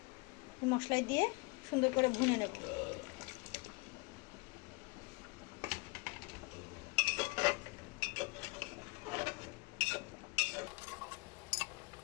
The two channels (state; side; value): quieter; right; 28.0 dB